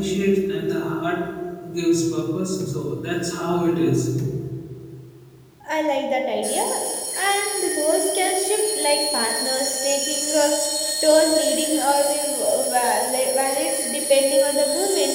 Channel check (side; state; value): both; identical; correlation 1.00